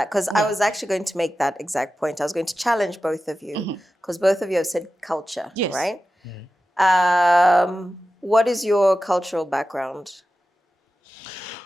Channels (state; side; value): normal; both; correlation 0.93